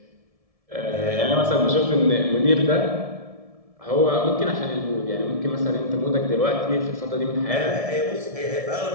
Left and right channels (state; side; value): late; left; 1.7 ms